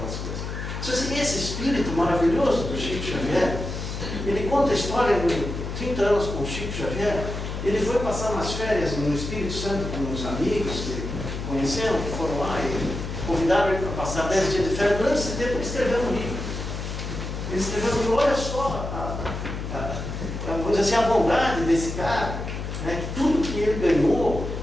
coisas. Então, assim, esse espírito maravilhoso do Chico Xavier, ele conta a história de 30 anos com o Chico Xavier. Ele foi passar umas férias no Espírito Santo com uns amigos que conheceram, que foram lá e convidaram ele para passar 10 dias de férias. Durante esse tempo ele escreveu um livro. Ele escreveu um livro, olha só, vamos dizer assim, a bondade desse cara, né, que tudo que ele ganhou,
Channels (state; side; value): noise; left; hum, 6 dB below the sound